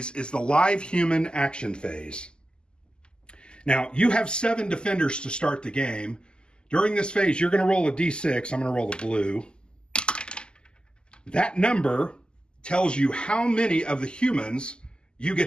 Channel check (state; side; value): late; right; 0.048 ms